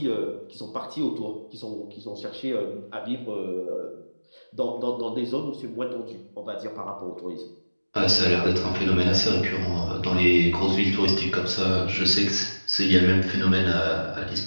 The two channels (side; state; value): both; inverted; correlation -1.00